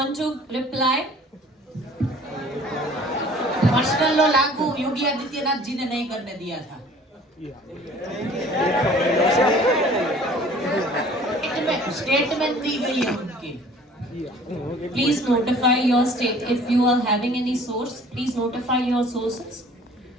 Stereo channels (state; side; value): normal; both; correlation 0.51